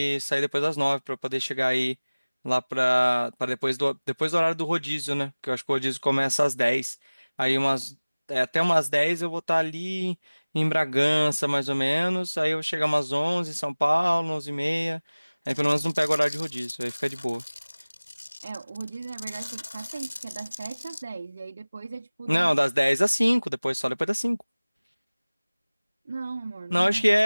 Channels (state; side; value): inverted; both; correlation -1.00